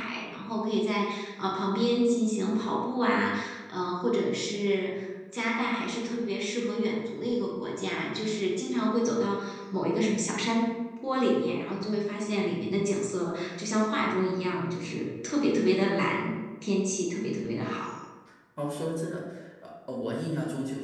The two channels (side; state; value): both; identical; correlation 1.00